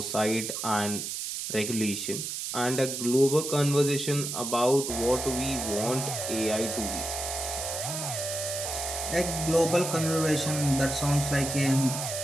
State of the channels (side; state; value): right; noise; hiss, 4 dB below the sound